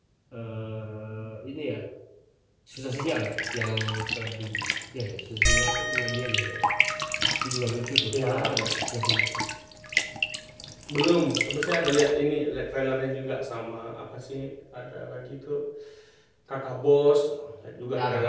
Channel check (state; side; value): identical; both; correlation 1.00